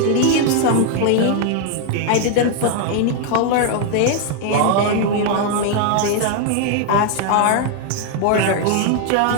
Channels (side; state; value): both; different; correlation 0.00